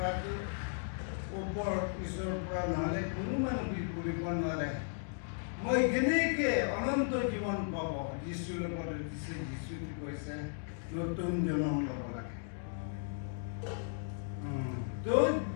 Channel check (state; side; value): silent; right; digital silence